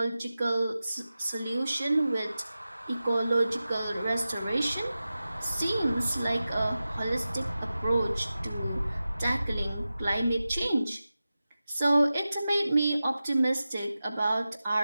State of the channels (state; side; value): inverted; both; correlation -0.94